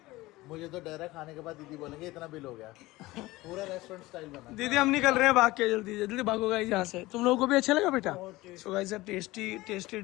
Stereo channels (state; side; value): quieter; right; 19.3 dB